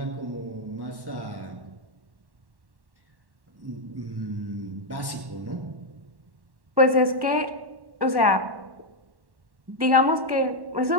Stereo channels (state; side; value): late; left; 1.1 ms